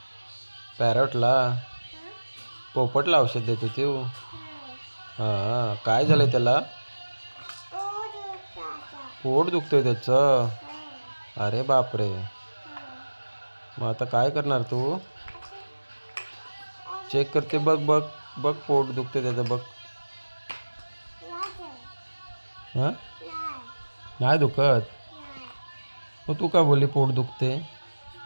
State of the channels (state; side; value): inverted; both; correlation -1.00